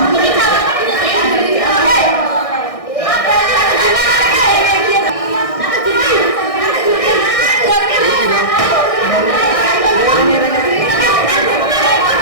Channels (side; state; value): right; late; 1.6 ms